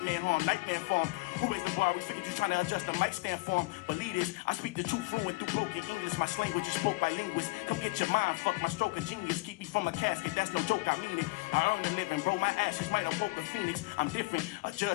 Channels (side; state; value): right; quieter; 24.0 dB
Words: man on. Nightmare form. Who is the bar? We figured you trying to adjust the mic stand form. Believe this. I speak the truth fluent through broken English. My language is spoke by linguists. Come get your mind. Fuck my stroke of genius. Keep me from a casket. That's no joke. I mean it. I earn the living, bro. My ashes might have woke the phoenix. I'm different. A